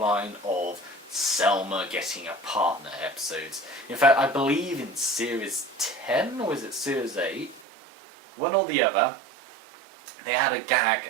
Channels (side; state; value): left; drops out; at 7.7 s